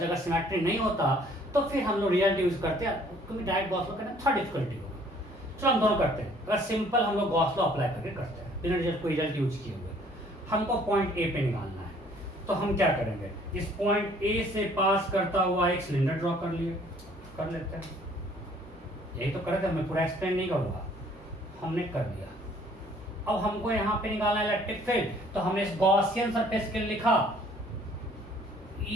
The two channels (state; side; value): normal; both; correlation 0.58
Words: सिमेट्री नहीं होता तो फिर हम लोग रियलिटी यूज करते हैं, क्योंकि डायरेक्ट गॉस लॉ करना थोड़ा डिफिकल्टी होगा। चलो हम दोनों करते हैं। अगर सिंपल हम लोग गॉस लॉ अप्लाई करके करते हैं बिना रिजल्ट कोई रिजल्ट यूज किए हुए, हमको पॉइंट ए पे निकालना है, तो हम क्या करेंगे? इस पॉइंट ए से पास करता हुआ एक सिलेंडर ड्रॉ कर लेते हैं। यही तो करे थे, मैं पूरा एक्सप्लेन नहीं करूंगा, हमने कर दिया। अब हमको यहाँ पे निकालना है इलेक्ट्रिक फील्ड, तो हमने इस गॉसियन सरफेस के लिए लिखा